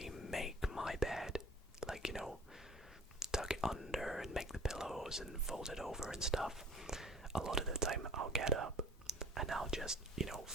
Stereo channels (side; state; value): both; normal; correlation 0.50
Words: make my bed. Tuck it under and make the pillows and fold it over and stuff. A lot of the time I'll get up and I'll just,